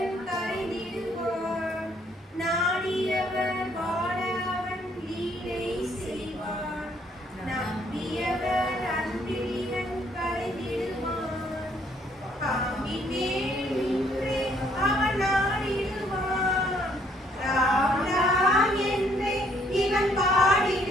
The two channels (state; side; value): normal; both; correlation 0.66